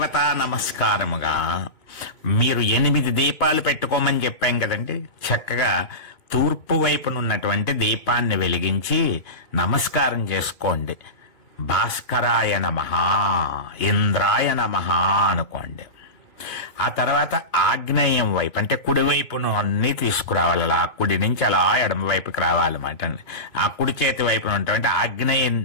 నమస్కారముగా మీరు 8 దీపాలు పెట్టుకోమని చెప్పాం కదండి. చక్కగా తూర్పు వైపునున్నటువంటి దీపాన్ని వెలిగించి నమస్కారం చేసుకోండి. భాస్కరాయ నమః, ఇంద్రాయ నమః అనుకోండి. ఆ తర్వాత ఆగ్నేయం వైపు అంటే కుడివైపును అన్ని తీసుకురావాలి. అలా కుడి నుంచి అలా ఎడమ వైపుకి రావాలన్నమాట. ఆ కుడి చేతి వైపున ఉన్నటువంటి ఆగ్నేయ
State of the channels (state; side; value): late; right; 2.7 ms